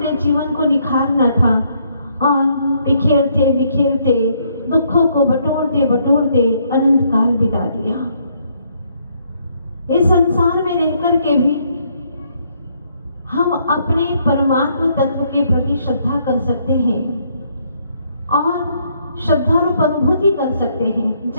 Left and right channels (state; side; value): inverted; both; correlation -0.70